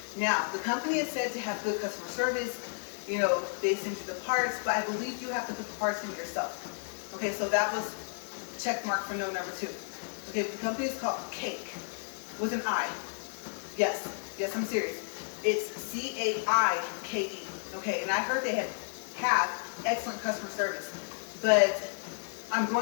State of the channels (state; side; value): silent; right; 56 dB below the other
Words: Now, the company is said to have good customer service. You know, they send you the parts, but I believe you have to put the parts in yourself. Okay, so that was check mark for no number 2. Okay, the company is called Cake with an I. Yes, I'm serious. It's CAIKE. Okay, and I heard they have excellent customer service, but I'm